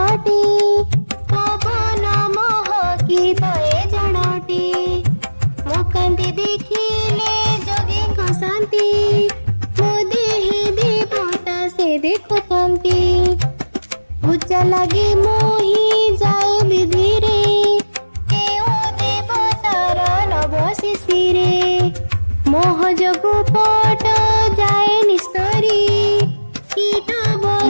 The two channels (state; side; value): inverted; both; correlation -1.00